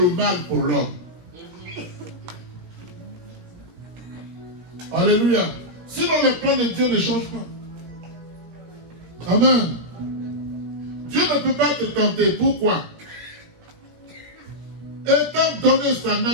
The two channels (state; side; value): late; left; 17 ms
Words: mal pour l'homme. Alléluia. Sinon, les plans de Dieu ne changent pas. Amen. Dieu ne peut pas te tenter. Pourquoi? Étant donné sa